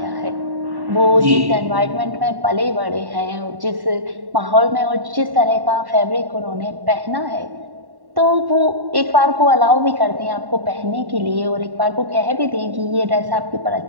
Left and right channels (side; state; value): left; late; 1.1 ms